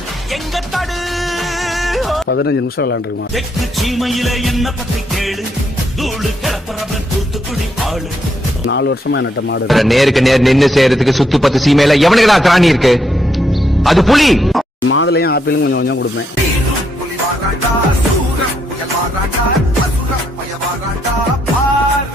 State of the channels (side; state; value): both; normal; correlation 0.76